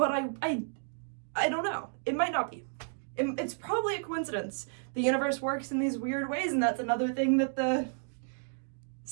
I don't know. It might not be. It's probably a coincidence. The universe works in these weird ways, and that's another thing that the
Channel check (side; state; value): left; silent; digital silence